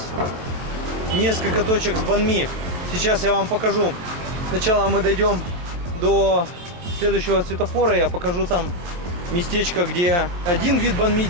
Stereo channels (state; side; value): late; left; 23 ms